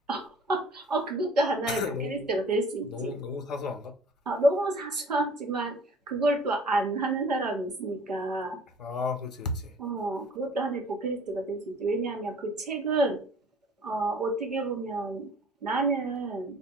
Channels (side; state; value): both; normal; correlation 0.50